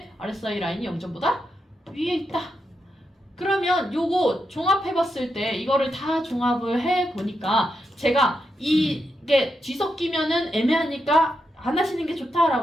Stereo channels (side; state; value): both; normal; correlation 0.84